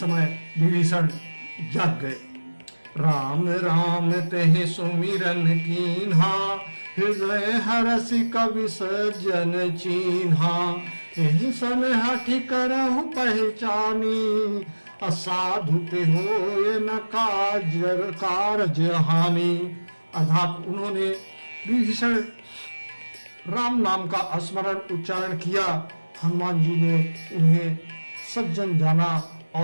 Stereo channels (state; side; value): inverted; both; correlation -1.00